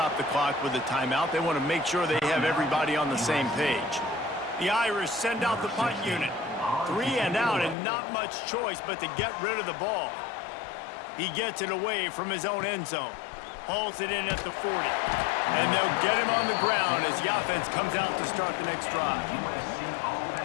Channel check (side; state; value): right; drops out; at 7.8 s